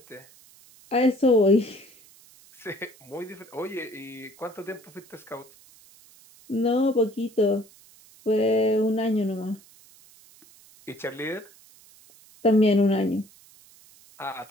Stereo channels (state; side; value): noise; right; hiss, 25 dB below the sound